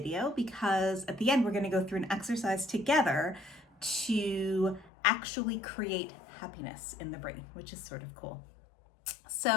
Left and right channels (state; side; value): drops out; right; at 4.9 s